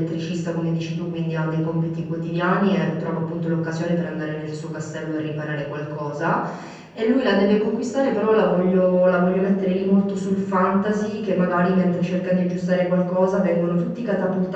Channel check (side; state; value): both; identical; correlation 1.00